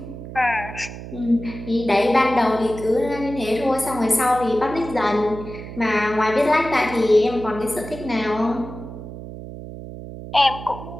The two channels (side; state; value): right; noise; hum, 12 dB below the sound